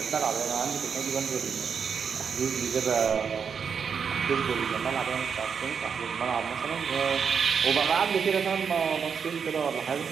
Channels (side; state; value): left; quieter; 6.5 dB